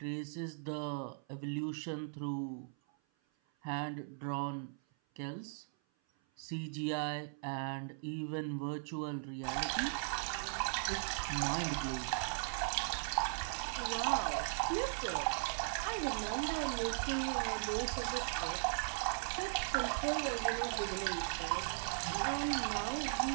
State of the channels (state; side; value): silent; left; 52 dB below the other